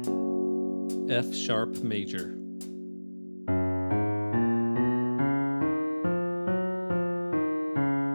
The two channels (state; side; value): inverted; both; correlation -1.00